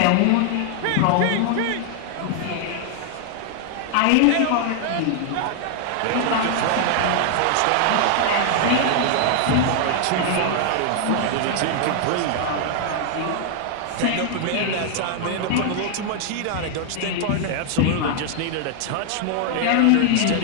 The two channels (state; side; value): different; both; correlation 0.00